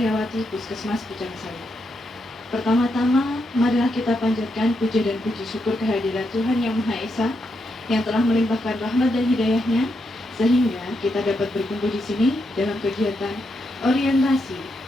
Puskesmas Pucang Sawit. Pertama-tama, marilah kita panjatkan puja dan puji syukur kehadirat Tuhan Yang Maha Esa yang telah melimpahkan rahmat dan hidayahnya sehingga kita dapat berkumpul di sini dalam kegiatan orientasi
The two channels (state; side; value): normal; both; correlation 0.82